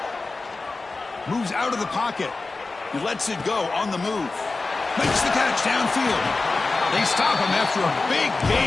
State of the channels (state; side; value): quieter; right; 3.6 dB